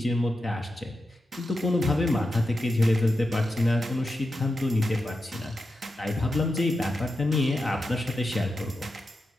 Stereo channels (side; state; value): both; normal; correlation 0.89